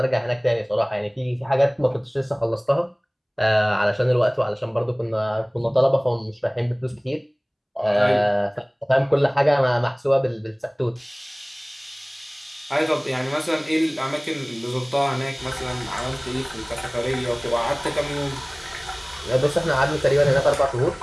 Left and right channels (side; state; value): both; identical; correlation 1.00